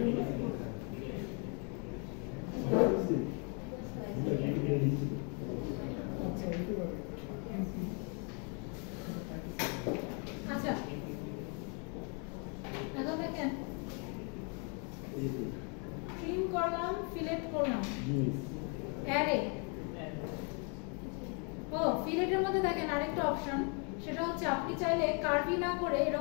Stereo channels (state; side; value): quieter; right; 37.3 dB